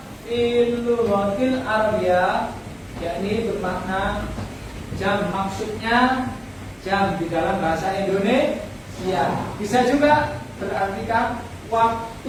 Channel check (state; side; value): identical; both; correlation 1.00